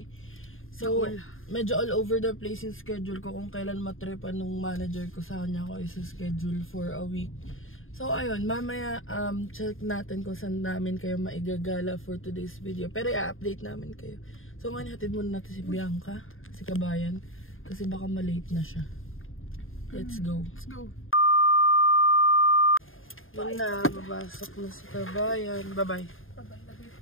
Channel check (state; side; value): late; right; 0.59 ms